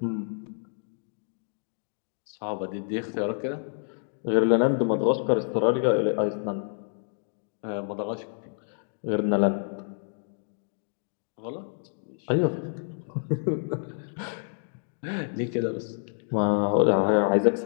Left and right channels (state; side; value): silent; right; digital silence